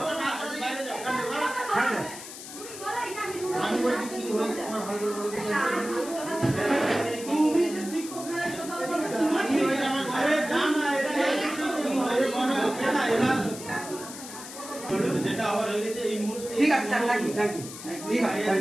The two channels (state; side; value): noise; left; hiss, 12 dB below the sound